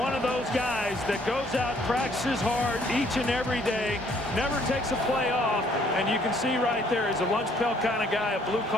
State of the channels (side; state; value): both; normal; correlation 0.63